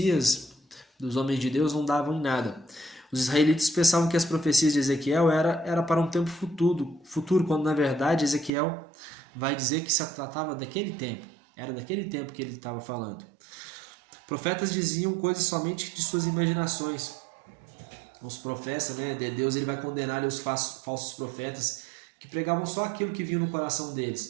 dos homens de Deus não davam em nada. Os israelitas pensavam que as profecias de Ezequiel era para um tempo futuro, quando na verdade Ezequiel vai dizer que se tratava daquele tempo, era daquele tempo que ele estava falando. Profetas diziam coisas somente de suas imaginações. Os profetas, né, de Deus ele vai condenar os falsos profetas que pregavam só aquilo que vinha no coração deles.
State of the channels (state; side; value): drops out; left; at 8.5 s